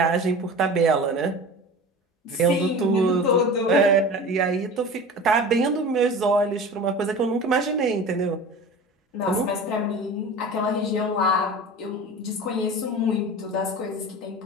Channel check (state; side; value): normal; both; correlation 0.35